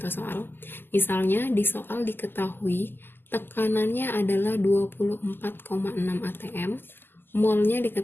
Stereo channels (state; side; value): late; right; 0.096 ms